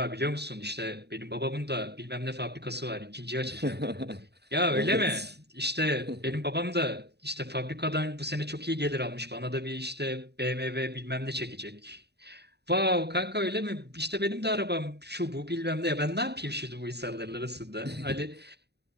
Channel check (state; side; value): late; left; 0.48 ms